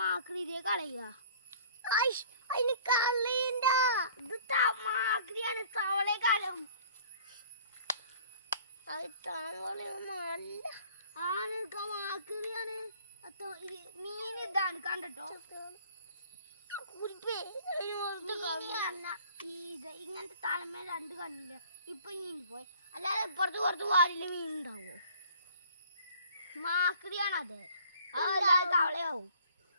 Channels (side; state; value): both; inverted; correlation -0.53